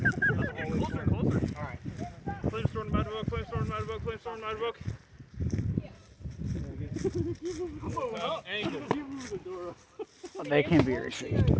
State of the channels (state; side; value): identical; both; correlation 1.00